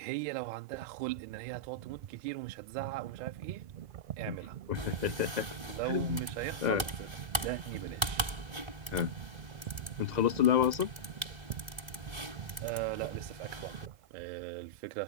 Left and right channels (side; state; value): left; late; 1.3 ms